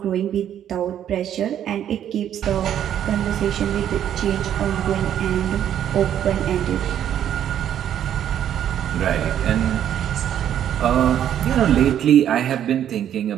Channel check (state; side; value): quieter; left; 10.3 dB